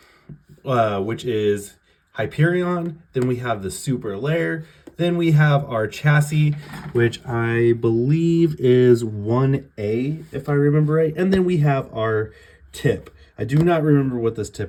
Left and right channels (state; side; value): identical; both; correlation 1.00